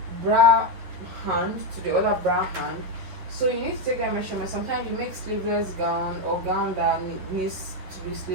hand to the other bra hand. So you need to take that measurement. Sometimes you make sleeveless gown or gown that needs to be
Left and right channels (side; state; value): left; late; 11 ms